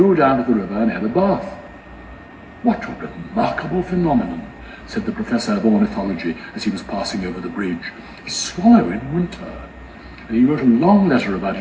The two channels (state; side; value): identical; both; correlation 1.00